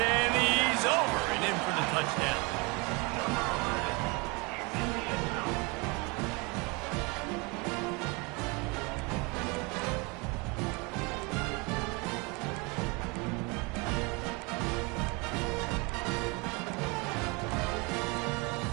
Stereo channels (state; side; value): quieter; left; 28.3 dB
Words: he's over and in for the touchdown.